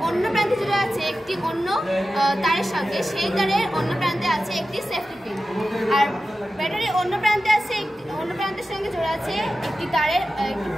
অন্য প্রান্তে জোড়া আছে একটি অন্য তারের সঙ্গে, সেই তারের অন্য প্রান্তে আছে একটি সেফটি পিন। আর ব্যাটারির অন্য প্রান্তের সঙ্গে জোড়া আছে একটি তারের একটি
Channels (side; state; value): both; normal; correlation 0.93